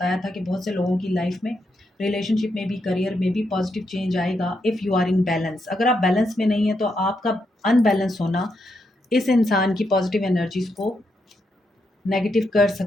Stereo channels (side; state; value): both; normal; correlation 0.81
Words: था कि बहुत से लोगों की लाइफ में, रिलेशनशिप में भी, करियर में भी पॉजिटिव चेंज आएगा if you are in balance. अगर आप बैलेंस में नहीं है तो आपका अनबैलेंस होना इस इंसान की पॉजिटिव एनर्जीज़ को नेगेटिव कर